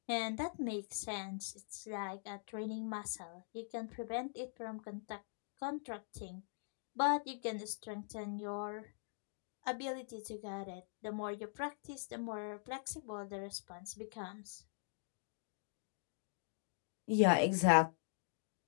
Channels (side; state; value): right; silent; digital silence